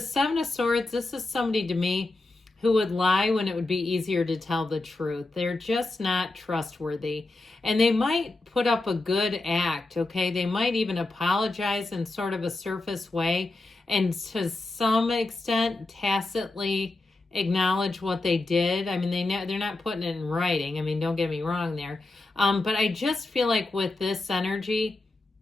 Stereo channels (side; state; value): right; quieter; 3.1 dB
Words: Seven of Swords, this is somebody to me who would lie when it would be easier to tell the truth. They're just not trustworthy. And they might put up a good act, okay? They might even apologize in sort of a surface way, and to some extent tacitly acknowledge what they did. I mean, they're not putting it in writing. I mean, don't get me wrong there. But I just feel like with this energy,